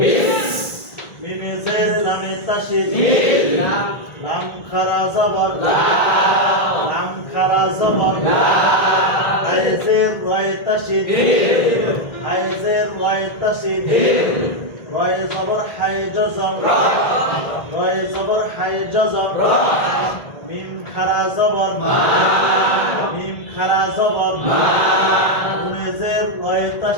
20 মিমেজের লামে তাশদীদ মিল লাম খারা জবর লা লাম খারা জবর লা আইজের রায় তাশদীদ দিল আইজের রায় তাশদীদ দিল রায় জবর হাই জজম রা রায় জবর হাই জজম রা মিম খারা জবর মা মিম খারা জবর মা গুনেজের রায়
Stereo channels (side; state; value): right; late; 1.9 ms